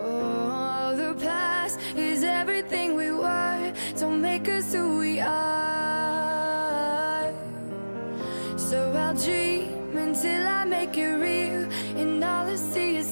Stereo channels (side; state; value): both; inverted; correlation -1.00